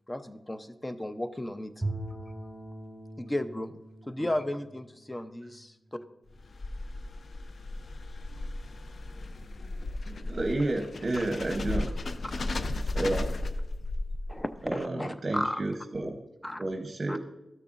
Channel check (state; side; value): normal; both; correlation 0.95